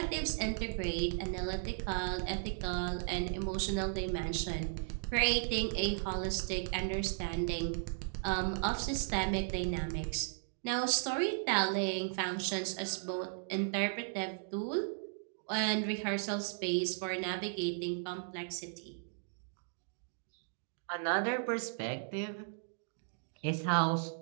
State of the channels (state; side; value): silent; left; digital silence